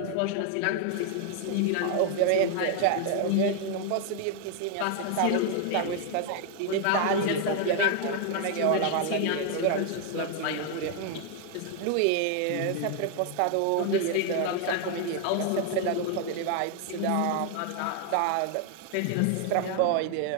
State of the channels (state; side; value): different; both; correlation 0.00